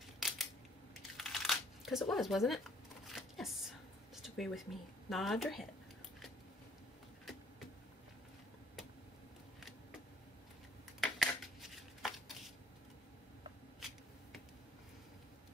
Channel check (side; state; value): both; normal; correlation 0.62